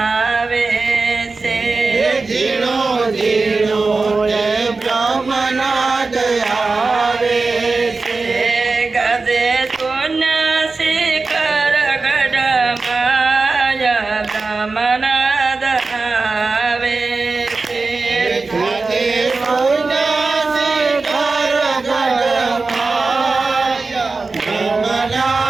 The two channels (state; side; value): quieter; left; 3.9 dB